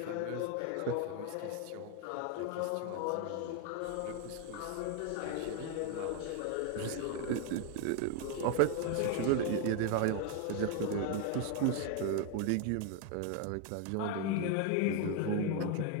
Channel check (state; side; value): different; both; correlation 0.01